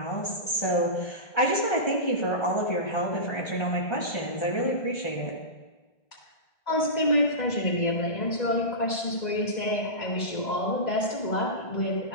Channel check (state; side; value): late; right; 2.0 ms